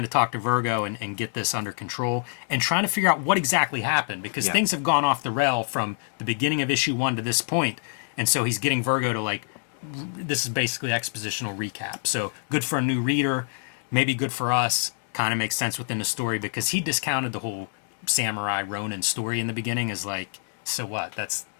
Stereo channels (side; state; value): right; silent; 61 dB below the other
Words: to talk to Virgo and get this under control and trying to figure out what exactly happened, because Yeah. things have gone off the rail from the beginning of issue 1 to this point, and so he's getting Virgo to like, this is basically expositional recap. So good for a new reader, maybe good for us. Kind of makes sense within the story, because he discounted the whole samurai Ronin story in the beginning as like, so what? That's